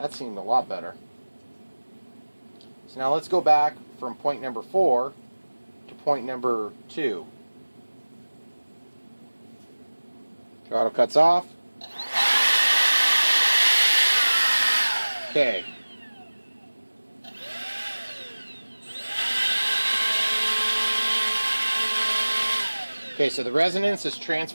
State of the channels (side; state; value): both; inverted; correlation -1.00